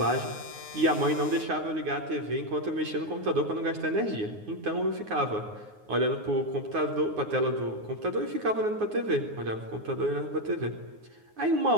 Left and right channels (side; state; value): left; late; 9.5 ms